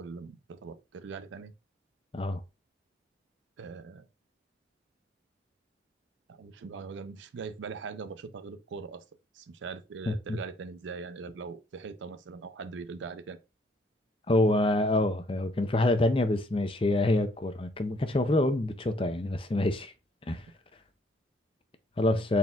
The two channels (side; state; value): both; normal; correlation 0.64